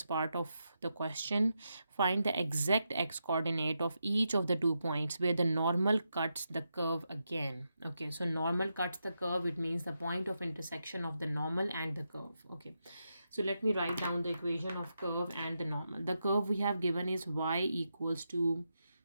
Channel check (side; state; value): both; inverted; correlation -0.85